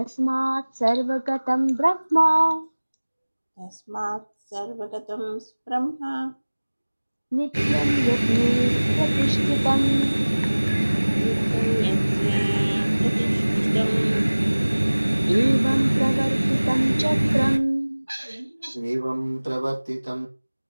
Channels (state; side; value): inverted; both; correlation -1.00